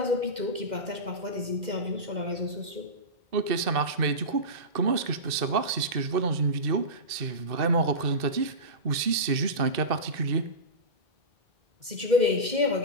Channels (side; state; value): left; late; 2.6 ms